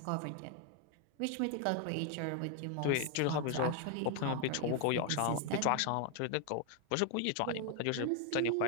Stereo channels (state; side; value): different; both; correlation 0.00